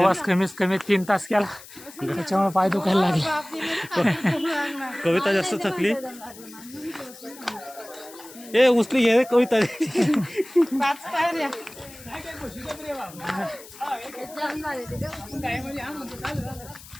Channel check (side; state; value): left; noise; hiss, 18 dB below the sound